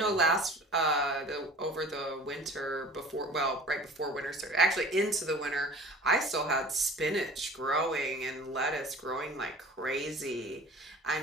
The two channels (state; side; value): normal; both; correlation 0.43